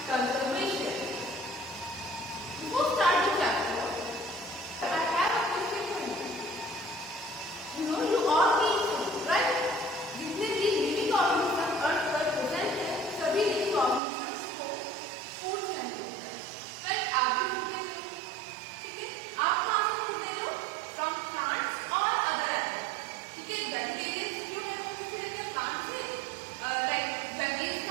conservation. Before start the chapter, I have a question for you. You all need food, right? जितने भी living organisms अर्थ पर present हैं, सभी living organisms को food चाहिए होता है. Right? आप भी food लेते हो, ठीक है? आप कहाँ से food लेते हो? From plants or other animals. ठीक है? Vegetarians जो है वो किससे लेते हैं? Plants से. Like veggies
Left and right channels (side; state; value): left; drops out; at 14.0 s